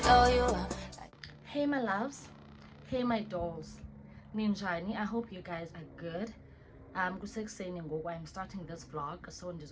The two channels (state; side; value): identical; both; correlation 1.00